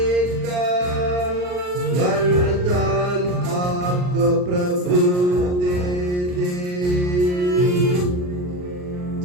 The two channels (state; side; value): late; left; 39 ms